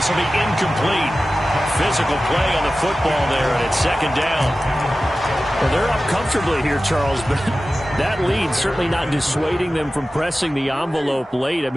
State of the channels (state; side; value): normal; both; correlation 0.95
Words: will be incomplete. Physical play on the football there, and it's second down. Well, they're up comfortably here, Charles, but that lead certainly not dissuading them from pressing the envelope late. I